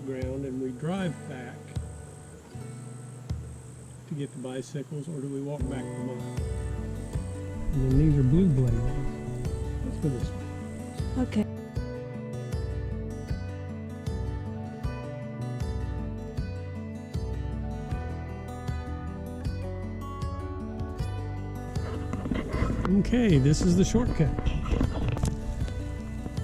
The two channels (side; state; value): both; identical; correlation 1.00